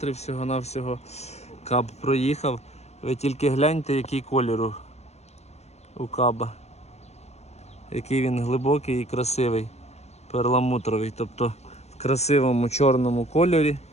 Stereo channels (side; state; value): right; late; 0.31 ms